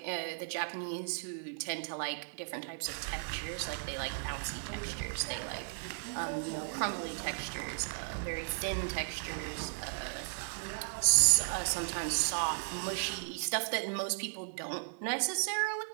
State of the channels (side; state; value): left; silent; digital silence